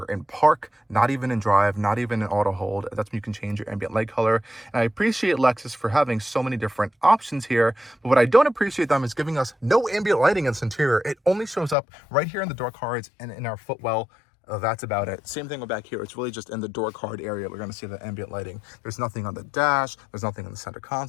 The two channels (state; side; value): drops out; right; at 11.8 s